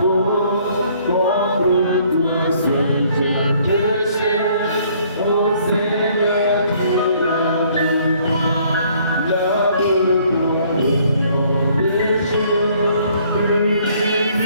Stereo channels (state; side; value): inverted; both; correlation -0.62